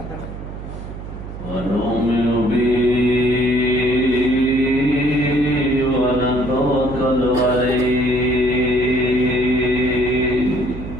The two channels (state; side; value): noise; right; hum, 10 dB below the sound